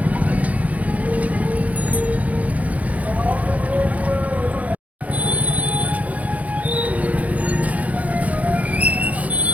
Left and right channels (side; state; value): left; late; 0.070 ms